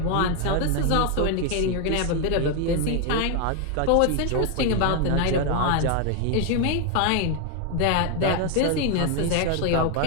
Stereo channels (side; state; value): both; different; correlation 0.01